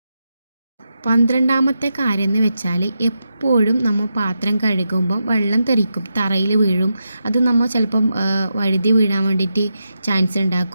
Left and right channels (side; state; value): both; inverted; correlation -0.87